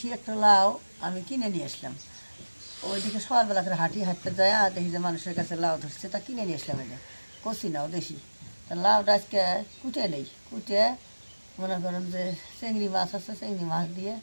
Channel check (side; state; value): both; inverted; correlation -1.00